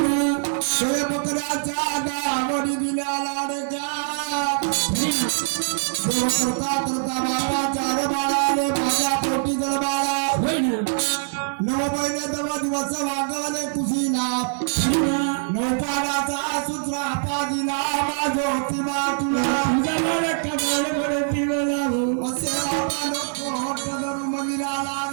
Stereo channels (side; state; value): left; silent; digital silence